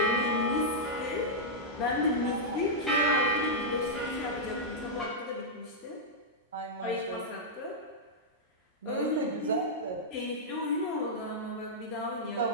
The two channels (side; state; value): both; normal; correlation -0.08